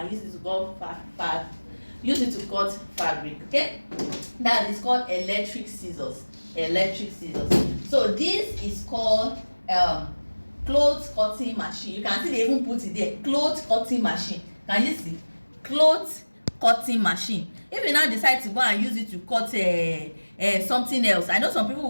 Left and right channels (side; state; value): both; inverted; correlation -1.00